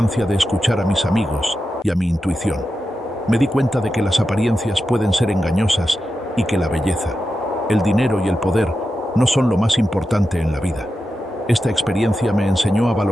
de escuchar a mis amigos y a mi intuición. Me di cuenta de que las apariencias pueden ser engañosas y que la belleza, el dinero y el poder no son lo más importante en la vida. Esta experiencia me enseñó a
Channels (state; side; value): normal; both; correlation 0.90